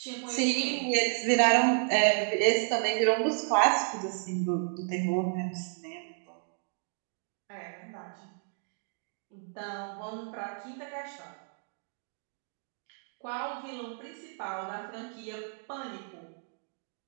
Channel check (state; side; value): silent; left; 56 dB below the other